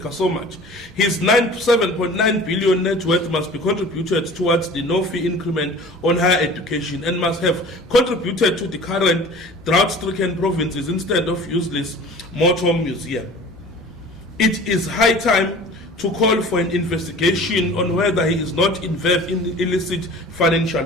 so much, his 7.9 billion net worth must be contributed towards the no-fee increment on higher education and must have contributed to the current drought-stricken provinces instead of useless motor museum. It is high time to call for an investigation on whether he is not involved in illicit financial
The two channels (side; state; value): both; normal; correlation 0.43